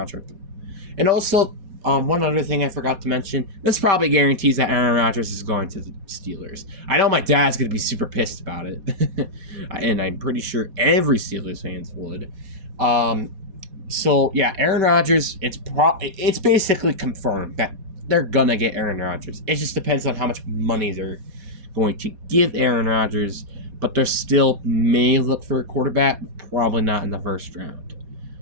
And also, one other thing I forgot to mention, this probably guarantees that Aaron Rodgers is going to the Steelers. I know my dad's going to be super pissed about it, and I'm pretty sure every Steelers fans would. So yeah, Aaron Rodgers, it's basically confirmed that they're gonna get Aaron Rodgers. It just depends on how much money they're going to give Aaron Rodgers, but they still may look for a quarterback, probably not in the first round.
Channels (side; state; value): left; late; 4.2 ms